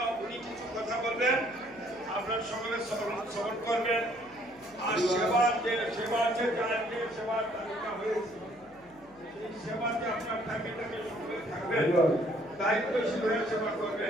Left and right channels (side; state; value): left; noise; hum, 27 dB below the sound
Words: উনি কিছু কথা বলবেন, আপনার সকলে শ্রবণ করবেন। আর সেবার যে সেবার তালিকা হয়েছে সেই সেবাতে আপনার ফ্যামিলিটাকে সকলে থাকবেন, দায়িত্বশীল হয়ে সেবা